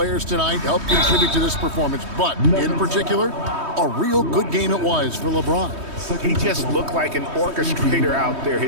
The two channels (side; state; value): left; late; 3.2 ms